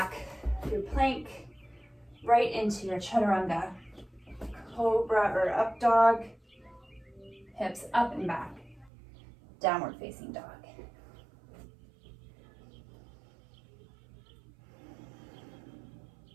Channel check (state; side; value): drops out; left; at 8.9 s